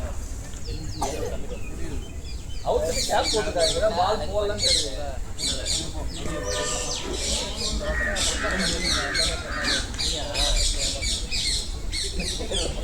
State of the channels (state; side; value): identical; both; correlation 1.00